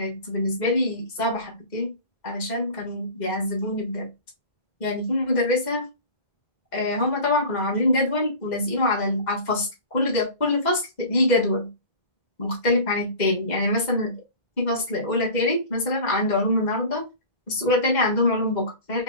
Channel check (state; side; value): late; right; 2.0 ms